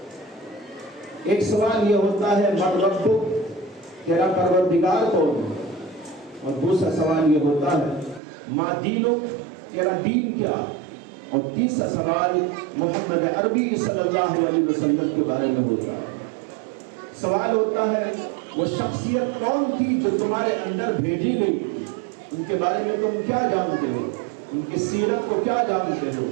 ایک سوال یہ ہوتا ہے: من ربک، تیرا پروردگار کون ہے؟ اور دوسرا سوال یہ ہوتا ہے: ما دینک، تیرا دین کیا؟ اور تیسرا سوال محمد عربی صلی اللہ علیہ وسلم کے بارے میں ہوتا ہے۔ سوال ہوتا ہے وہ شخصیت کون تھی جو تمہارے اندر بھیجی گئی، ان کے بارے میں تم کیا جانتے ہو، ان کی سیرت کو کیا جانتے ہو،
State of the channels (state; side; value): drops out; left; at 8.2 s